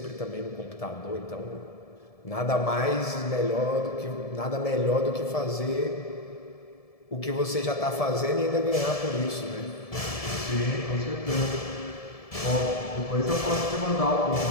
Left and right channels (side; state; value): right; late; 1.7 ms